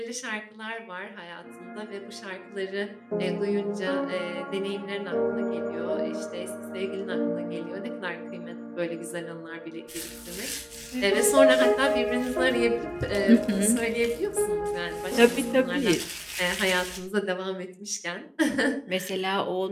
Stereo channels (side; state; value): both; identical; correlation 1.00